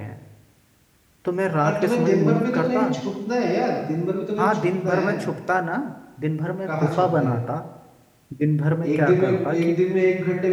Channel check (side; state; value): both; identical; correlation 1.00